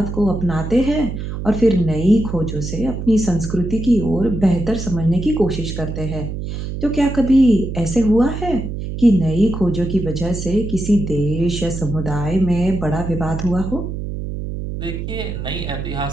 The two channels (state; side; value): noise; right; hum, 6 dB below the sound